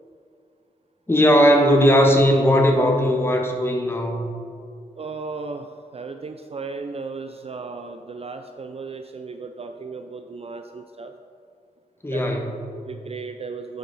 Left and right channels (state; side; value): normal; both; correlation 0.72